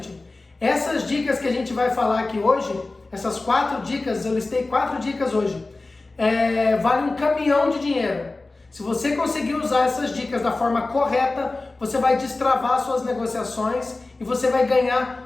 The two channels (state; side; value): quieter; right; 3.3 dB